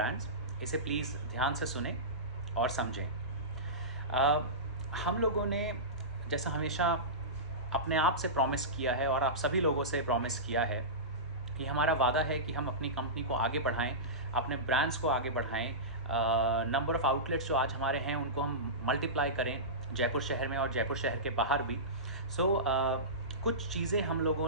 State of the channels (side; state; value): both; normal; correlation -0.19